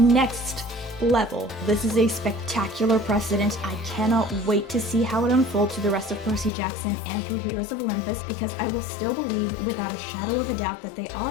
level. This is a spectacular precedent. I cannot wait to see how it unfolds through the rest of Percy Jackson and through Heroes of Olympus, because I will still believe without a shadow of a doubt that they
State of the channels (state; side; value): drops out; right; at 6.5 s